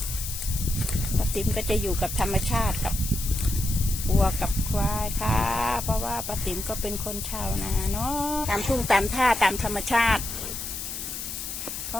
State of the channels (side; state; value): left; noise; hiss, 6 dB below the sound